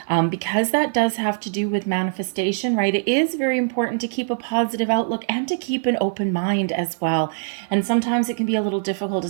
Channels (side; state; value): left; silent; 59 dB below the other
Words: because that does have to do with manifestation, right, it is very important to keep a positive outlook and to keep an open mind as well. And sometimes it can be a little difficult,